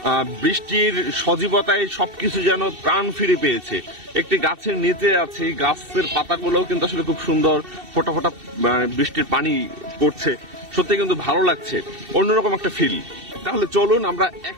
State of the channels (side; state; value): left; late; 2.7 ms